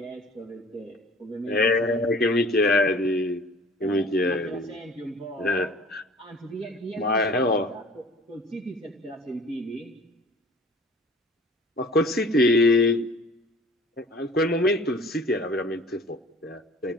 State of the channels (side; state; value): both; normal; correlation 0.47